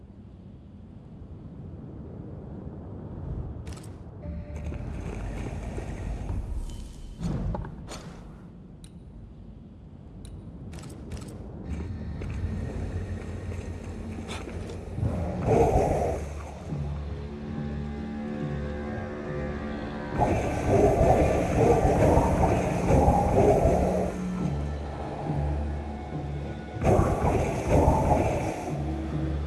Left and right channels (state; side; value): identical; both; correlation 1.00